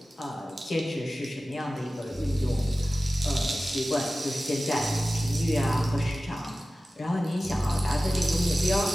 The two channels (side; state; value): both; normal; correlation 0.96